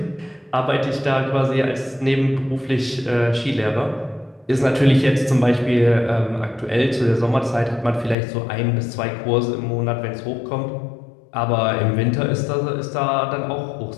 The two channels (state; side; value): drops out; right; at 8.2 s